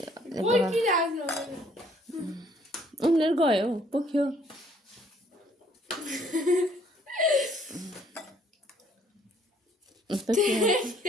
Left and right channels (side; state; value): both; normal; correlation 0.62